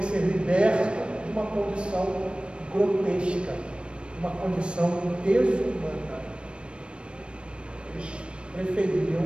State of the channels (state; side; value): late; left; 0.057 ms